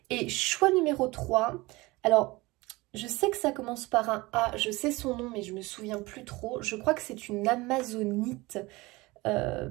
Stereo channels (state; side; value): quieter; left; 22.0 dB